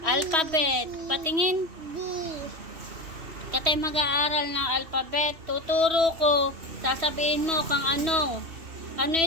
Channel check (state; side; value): late; left; 3.1 ms